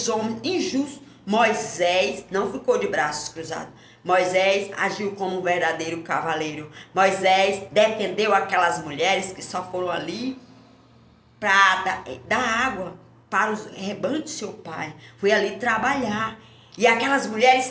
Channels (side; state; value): both; identical; correlation 1.00